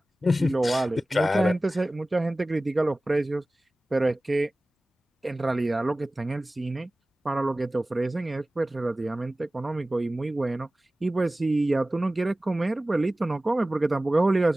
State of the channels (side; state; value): both; normal; correlation 0.97